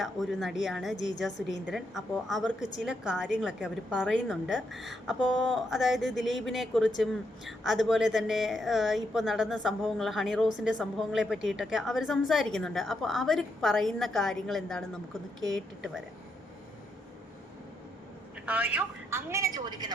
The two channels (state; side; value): normal; both; correlation 0.79